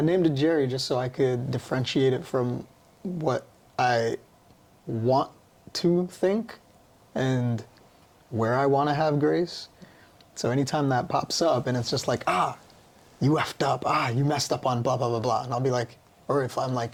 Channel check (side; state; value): both; identical; correlation 1.00